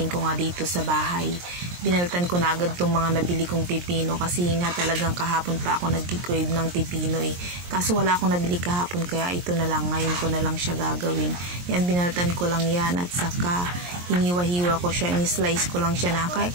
ko nga dito sa bahay, binaltan ko na agad tong mga nabili kong pipino kasi nga talagang kahapon pa ako nagki-crave ng pipino eh. Kaso wala akong nabili kahapon kaya ito na lang, ngayon ko na lang siya gagawin. Yan, binaltan ko lang yan at saka hiniwa-hiwa ko siya, in-slice ko lang siya na kaya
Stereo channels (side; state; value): left; late; 23 ms